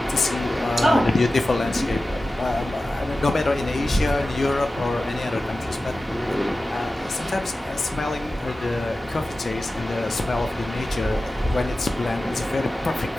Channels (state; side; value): normal; both; correlation 0.94